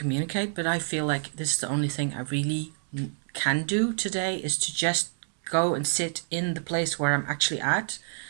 but I feel like this is the only thing I really can do today, is to just go and sit in the place where I'm actually at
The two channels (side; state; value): left; silent; 60 dB below the other